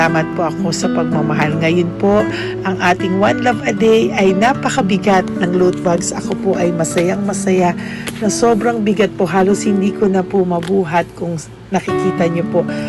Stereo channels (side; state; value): both; identical; correlation 1.00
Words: po ako sa pagmamahal. Ngayon po, ang ating One Love a Day ay napakabigat ng loot bags. Ako po ay masayang-masaya na sobrang bigat po. Halos hindi ko na po mabuhat kung nakikita niyo po